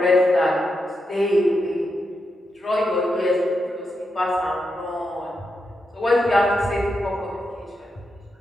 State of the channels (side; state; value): both; normal; correlation 0.85